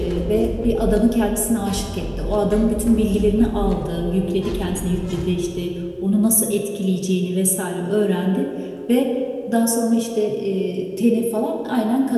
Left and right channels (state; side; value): identical; both; correlation 1.00